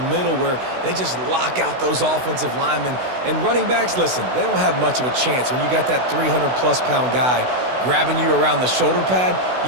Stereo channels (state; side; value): late; left; 16 ms